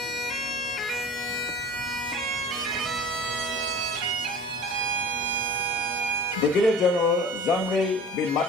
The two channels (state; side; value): normal; both; correlation 0.41